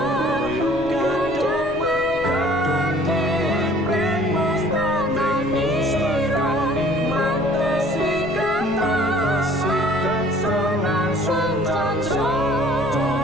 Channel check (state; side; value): noise; left; rumble, 16 dB below the sound